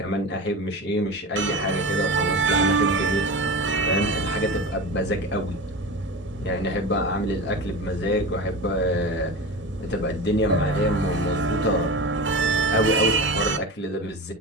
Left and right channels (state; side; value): normal; both; correlation 0.28